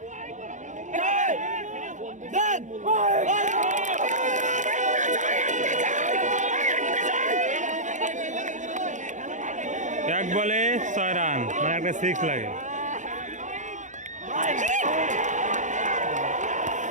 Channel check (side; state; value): left; late; 0.35 ms